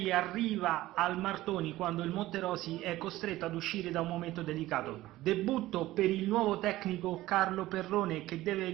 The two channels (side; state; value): left; quieter; 16.5 dB